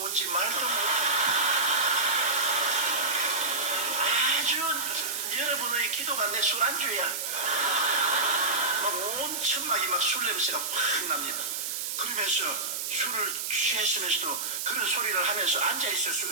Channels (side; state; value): right; noise; hiss, 3 dB below the sound